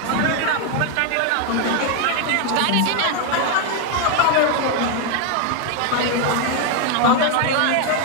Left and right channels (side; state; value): both; different; correlation 0.01